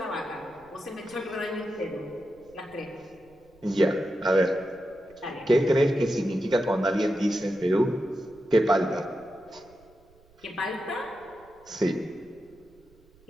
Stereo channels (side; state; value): right; noise; rumble, 29 dB below the sound